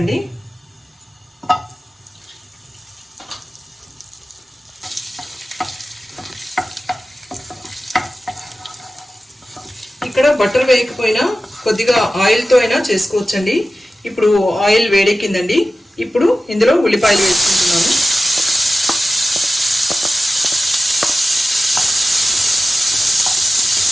ఇక్కడ బటర్ వేయకపోయినా కొద్దిగా ఆయిల్తో అయినా చేసుకోవచ్చండి. ఇప్పుడు ఆయిల్ వేడెక్కిందండి. ఇప్పుడు ఇందులో ఉల్లిపాయలు వేసుకుంటున్నాను.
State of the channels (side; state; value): both; normal; correlation 0.94